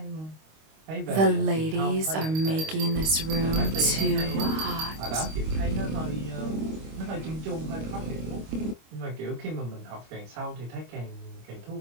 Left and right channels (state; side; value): late; left; 25 ms